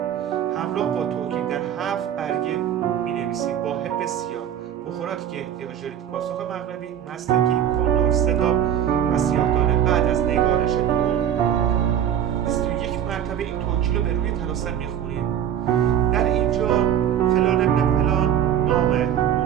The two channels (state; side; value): quieter; left; 9.9 dB